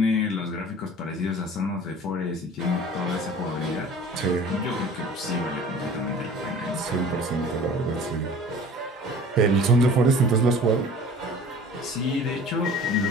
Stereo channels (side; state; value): both; normal; correlation 0.44